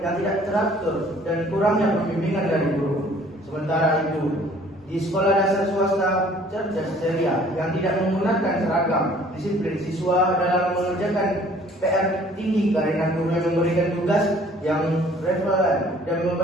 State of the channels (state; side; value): normal; both; correlation 0.55